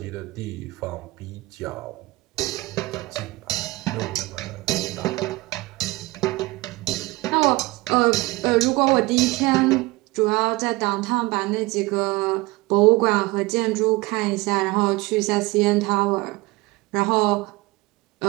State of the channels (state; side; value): quieter; left; 21.8 dB